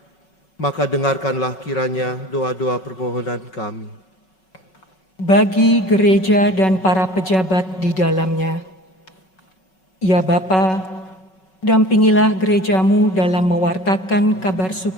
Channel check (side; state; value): right; late; 5.7 ms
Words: Maka dengarkanlah kiranya doa-doa permohonan kami. Bagi gereja dan para pejabat di dalamnya, ya Bapa, dampingilah gerejamu dalam mewartakan kabar